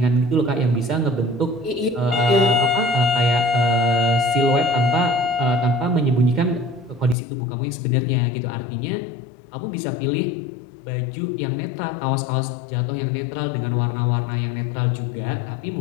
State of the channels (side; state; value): right; drops out; at 7.2 s